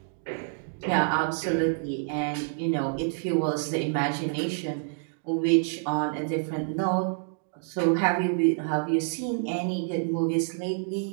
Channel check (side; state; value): left; silent; digital silence